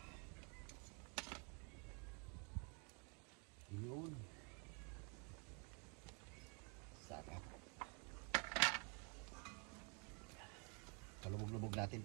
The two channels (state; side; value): quieter; left; 35.4 dB